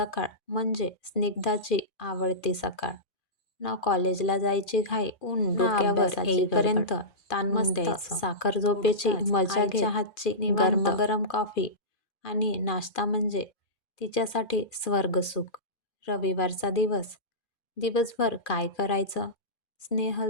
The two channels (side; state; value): right; late; 2.4 ms